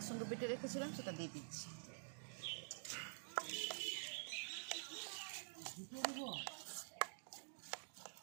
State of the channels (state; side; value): silent; left; digital silence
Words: বেটে রেখেছিলাম, সেটা দিয়ে দিচ্ছি।